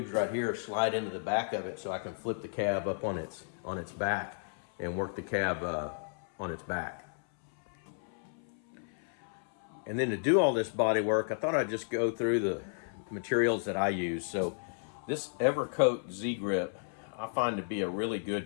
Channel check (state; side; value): silent; right; 56 dB below the other